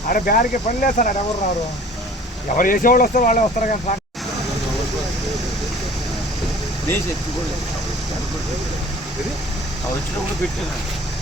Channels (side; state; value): both; normal; correlation 0.47